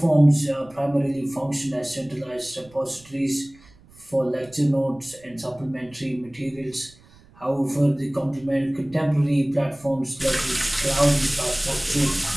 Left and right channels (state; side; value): noise; right; rumble, 26 dB below the sound